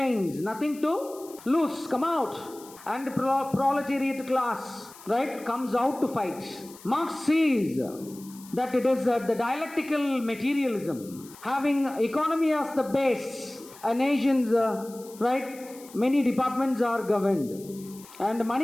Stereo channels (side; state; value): left; noise; hiss, 20 dB below the sound